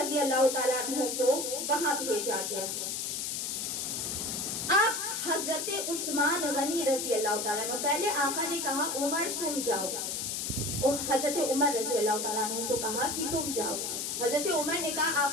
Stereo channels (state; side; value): noise; left; hiss, 2 dB below the sound